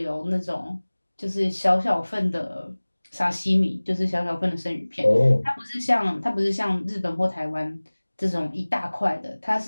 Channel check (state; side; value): inverted; both; correlation -1.00